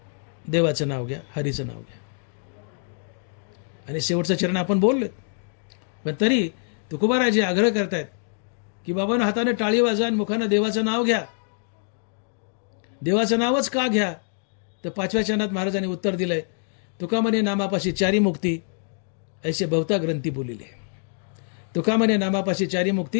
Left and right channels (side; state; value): right; silent; 61 dB below the other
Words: देवाचं नाव घ्या, हरीचं नाव घ्या. आणि शेवटचं चरण आपण बोललो, पण तरी तुकोबाराजी आग्रह करतायत की बाबांनो, हाताने टाळी वाजा आणि मुखानं देवाचं नाव घ्या. देवाचं नावच का घ्या? तर 5व्या चरणात महाराजांनी उत्तर दिलंय, तुका म्हणे नामापाशी चारी मुक्ती ऐसे बहुता ग्रंथी बोलिले. तुका म्हणे नामापाशी चारी